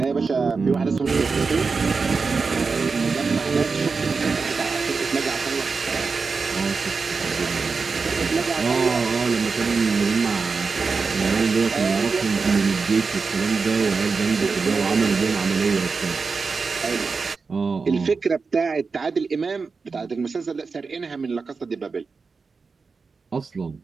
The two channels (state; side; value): quieter; left; 4.7 dB